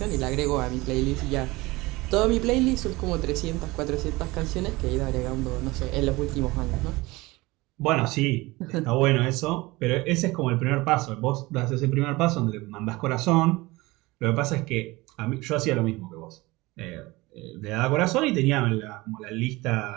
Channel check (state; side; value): quieter; left; 21.5 dB